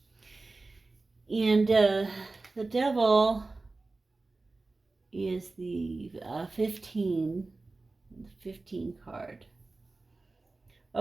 And the Devil is the 15 card.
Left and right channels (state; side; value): quieter; left; 3.4 dB